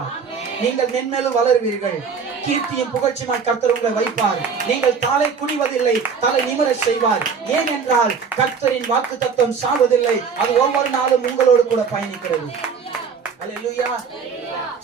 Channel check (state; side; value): quieter; left; 5.9 dB